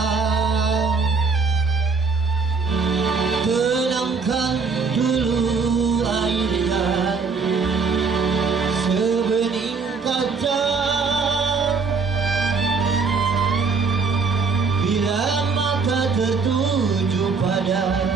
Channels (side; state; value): left; quieter; 4.7 dB